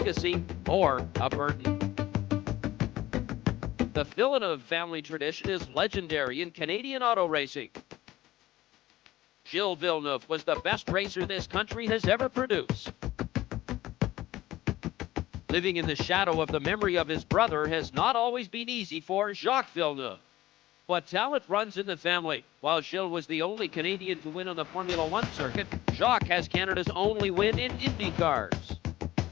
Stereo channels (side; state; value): right; quieter; 15.8 dB